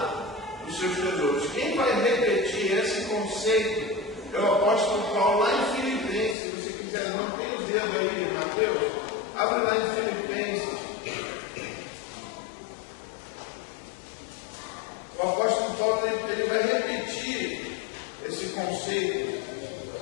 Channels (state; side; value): drops out; right; at 6.4 s